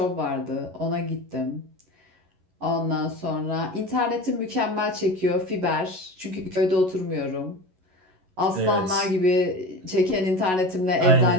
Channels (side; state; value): left; late; 11 ms